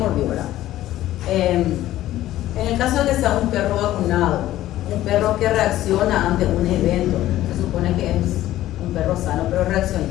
¿verdad? En el caso de que sea un perro vacunado, un perro que reacciona ante un evento, se supone que es un perro sano, pero reacciona.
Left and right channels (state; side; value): quieter; right; 14.3 dB